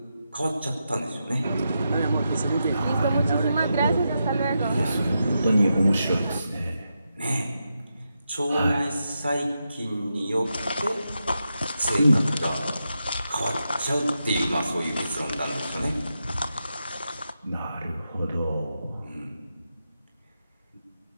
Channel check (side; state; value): both; inverted; correlation -0.86